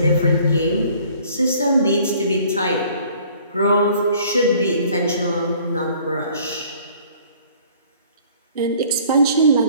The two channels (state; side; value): inverted; both; correlation -0.55